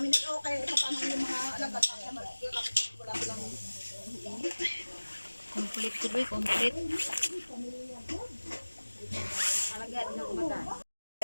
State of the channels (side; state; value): both; inverted; correlation -1.00